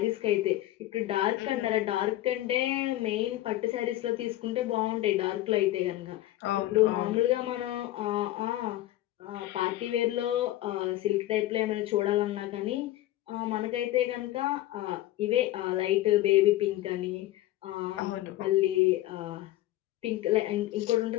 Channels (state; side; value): quieter; right; 15.4 dB